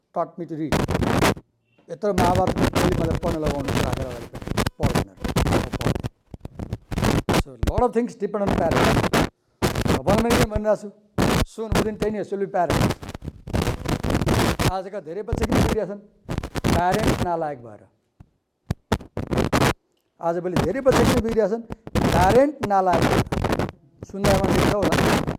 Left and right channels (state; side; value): identical; both; correlation 1.00